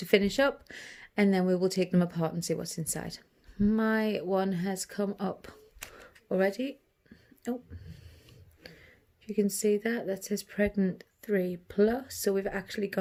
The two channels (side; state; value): both; identical; correlation 1.00